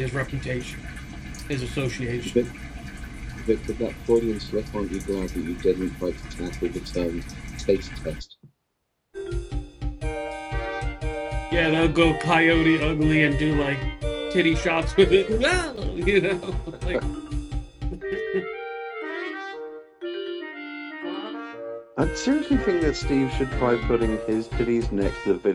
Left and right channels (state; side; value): identical; both; correlation 1.00